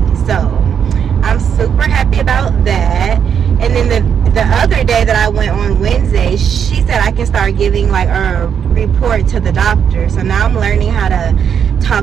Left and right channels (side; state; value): left; quieter; 7.8 dB